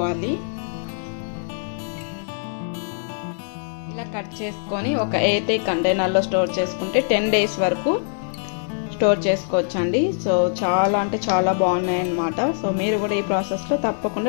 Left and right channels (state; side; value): silent; right; digital silence